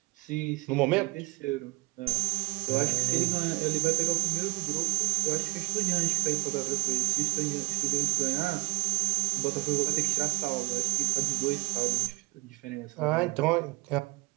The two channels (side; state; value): left; quieter; 24.8 dB